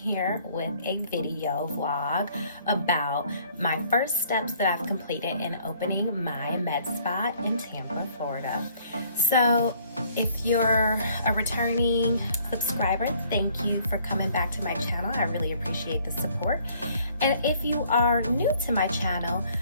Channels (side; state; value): both; inverted; correlation -0.60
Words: with a video vlog about my first steps that I've completed in opening my med spa in Tampa, Florida. So if you're a returning subscriber, thank you for coming back to my channel. I really appreciate the support. And if you are new to my channel,